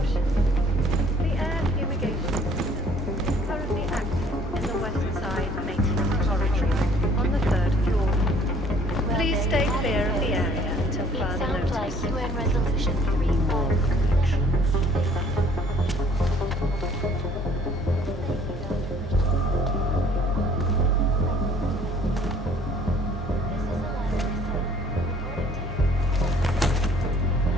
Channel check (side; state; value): both; normal; correlation 0.57